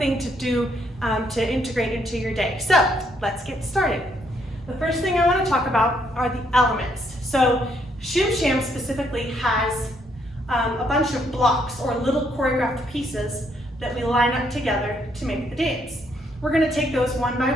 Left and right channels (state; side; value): normal; both; correlation 0.72